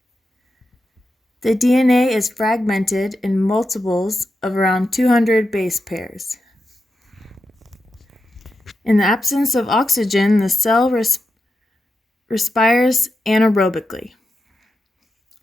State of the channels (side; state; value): both; normal; correlation 0.88